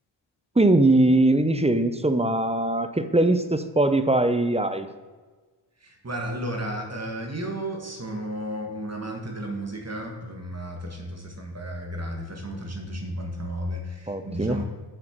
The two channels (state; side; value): normal; both; correlation 0.62